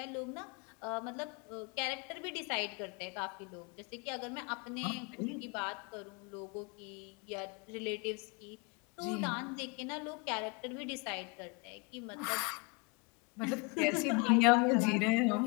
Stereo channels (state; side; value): quieter; right; 31.1 dB